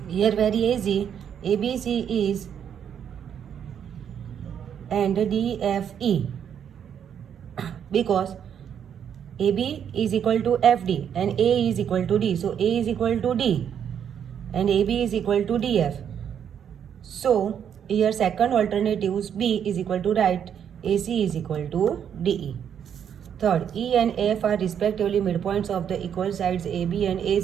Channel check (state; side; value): quieter; left; 8.5 dB